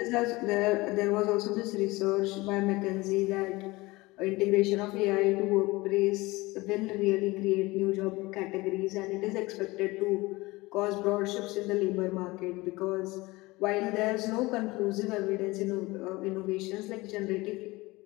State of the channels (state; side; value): quieter; right; 21.6 dB